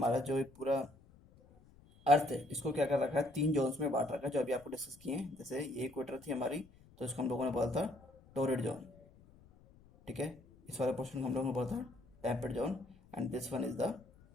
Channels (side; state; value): left; noise; rumble, 25 dB below the sound